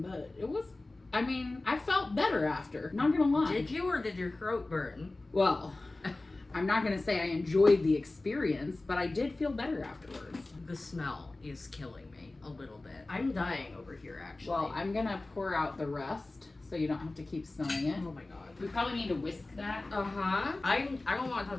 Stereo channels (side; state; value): right; quieter; 3.0 dB